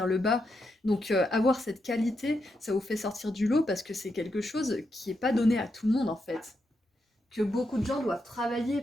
le bas. Donc avoir cette qualité, ça vous fait sortir du lot parce que c'est quelque chose qui est pas donné à tout le monde en fait. que beaucoup de gens doivent travailler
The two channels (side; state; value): both; normal; correlation 0.83